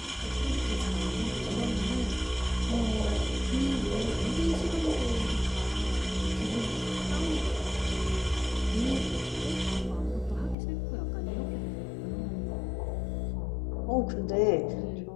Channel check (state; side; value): drops out; right; at 10.6 s